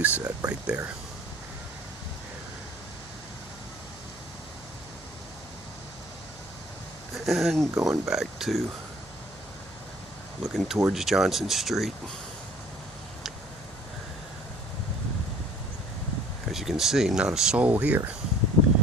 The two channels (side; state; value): right; noise; hum, 22 dB below the sound